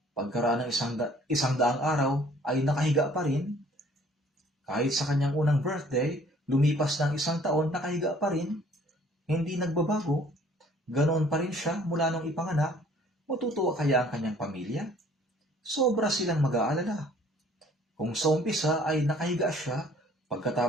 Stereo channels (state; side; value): normal; both; correlation 0.56